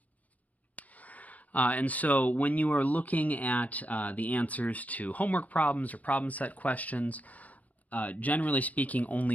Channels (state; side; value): late; right; 0.075 ms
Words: And so when you are looking at the answers to homework problems or problem set questions, generally speaking,